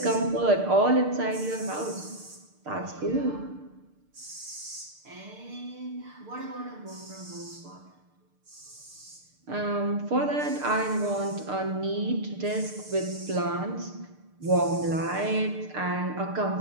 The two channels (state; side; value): late; left; 6.6 ms